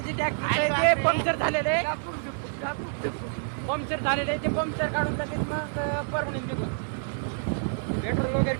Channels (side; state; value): left; silent; digital silence